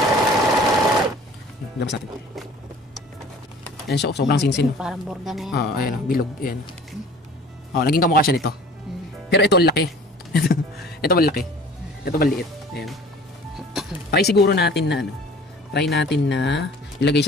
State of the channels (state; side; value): normal; both; correlation 0.47